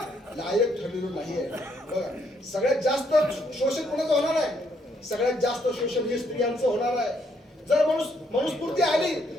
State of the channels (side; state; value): both; normal; correlation 0.72